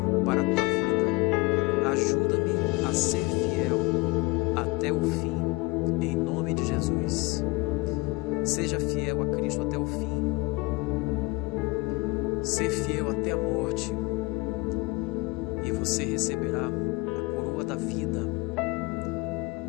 para a tua vida. Ajuda-me a ser fiel até o fim, em nome de Jesus. Seja fiel a Cristo até o fim. Ser fiel até a morte. E você receberá a coroa da vida.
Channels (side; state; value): right; quieter; 24.8 dB